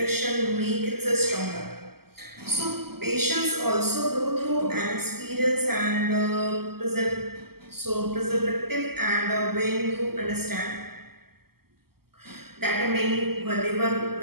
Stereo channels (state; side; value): late; left; 0.95 ms